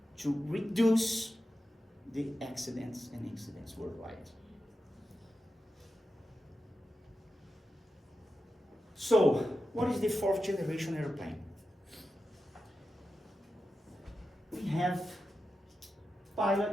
to reduce the accidents and incidents worldwide. So, what is the 4th generation airplane? We have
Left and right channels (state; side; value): normal; both; correlation 0.91